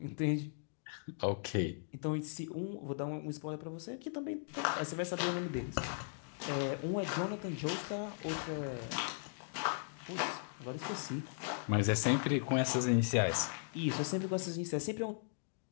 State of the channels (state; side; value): silent; right; digital silence